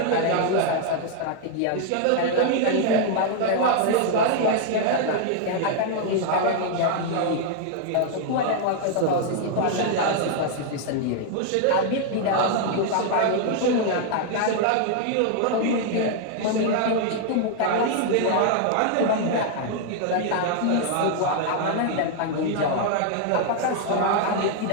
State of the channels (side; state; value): both; different; correlation 0.00